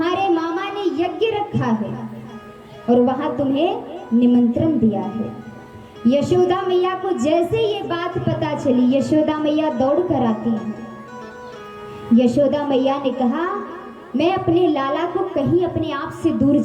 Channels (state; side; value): identical; both; correlation 1.00